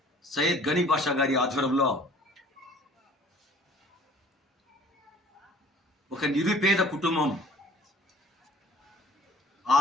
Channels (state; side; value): normal; both; correlation 0.52